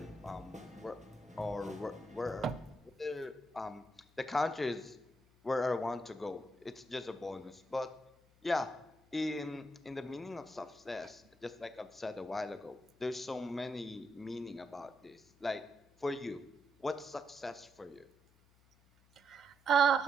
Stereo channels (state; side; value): noise; left; hum, 30 dB below the sound